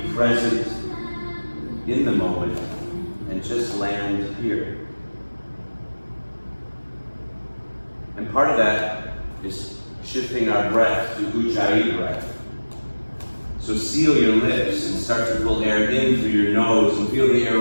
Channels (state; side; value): inverted; both; correlation -1.00